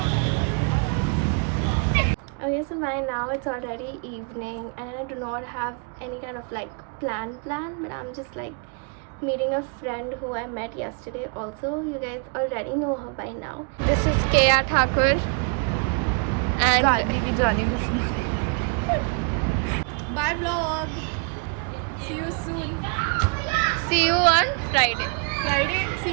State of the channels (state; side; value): quieter; left; 39.1 dB